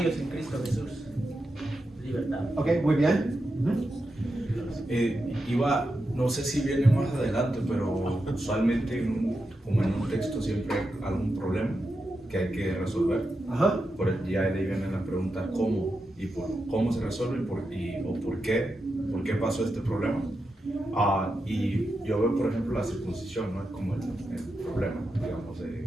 en Cristo Jesús? Libertad. Ok, muy bien. No sé si viene más adelante, pero usualmente como en un texto siempre hay algún problema que hay que resolver. Ajá. Ya de ahí viene la pregunta cómo y cómo se resuelve o por qué pasó este problema. Y yo veo, por ejemplo, la circuncisión, ¿no? Como el problema, digamos,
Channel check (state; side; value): normal; both; correlation 0.88